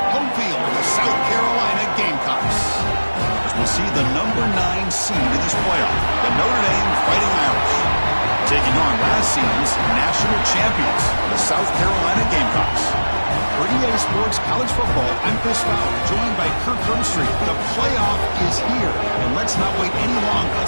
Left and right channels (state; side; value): inverted; both; correlation -1.00